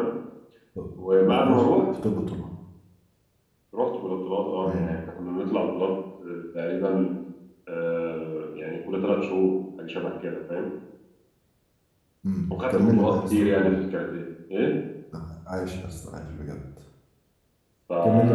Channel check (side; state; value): both; identical; correlation 1.00